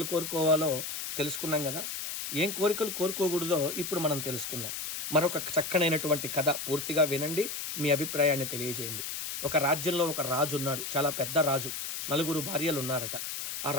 కోరుకోవాలో తెలుసుకున్నాం కదా. ఏం కోరికలు కోరుకోకూడదో ఇప్పుడు మనం తెలుసుకుందాం. మరొక చక్కనైనటువంటి కథ పూర్తిగా వినండి, మీ అభిప్రాయాన్ని తెలియజేయండి. ఒక రాజ్యంలో ఒక రాజు ఉన్నాడు, చాలా పెద్ద రాజు. 4 భార్యలు ఉన్నారట. ఆ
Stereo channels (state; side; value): noise; left; hiss, 5 dB below the sound